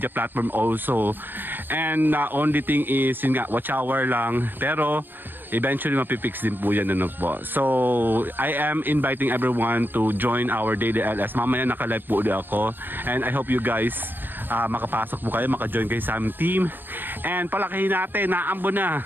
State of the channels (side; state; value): left; late; 0.094 ms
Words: platform also. And only thing is, yun nga, watch hour lang. Pero eventually mapipix din po yan, po. So, I am inviting everyone to join our daily LS. Mamaya naka-live po ulit ako. And I hope you guys makapasok po kayo, maka-join kayo sa aming team. And palakihin natin, naambo na